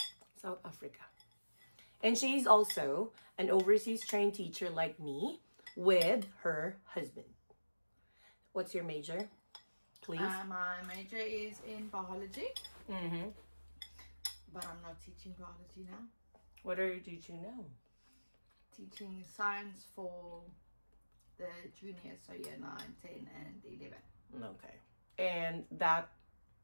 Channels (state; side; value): inverted; both; correlation -1.00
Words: South Africa. And she's also an overseas trained teacher like me with her husband. What's your major? Please. My major is in biology. Mm-hmm. But I'm not teaching biology now. What are you teaching now? Teaching science for the juniors, so year 9, 10 and 11. Okay. And that